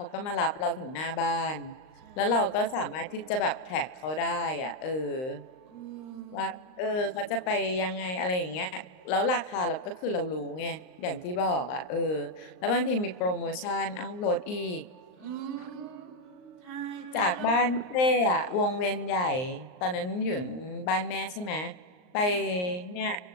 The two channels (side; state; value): right; late; 39 ms